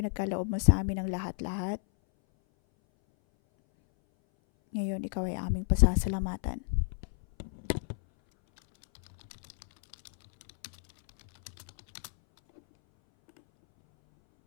mo sa amin ang lahat-lahat. Ngayon, Ikaw ay aming pasasalamatan.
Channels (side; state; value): right; silent; 57 dB below the other